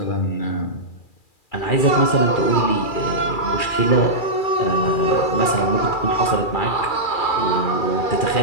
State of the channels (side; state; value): right; late; 2.4 ms